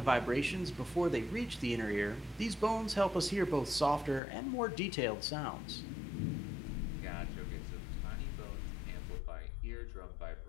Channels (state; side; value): drops out; right; at 4.2 s